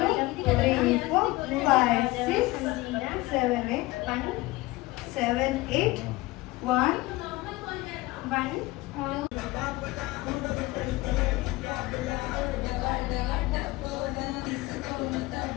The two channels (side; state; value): right; quieter; 20.3 dB